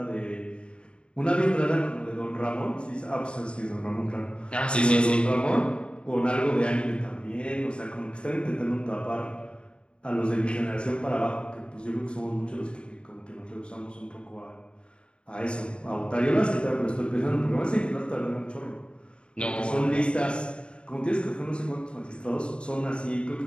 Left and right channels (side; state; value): right; late; 0.054 ms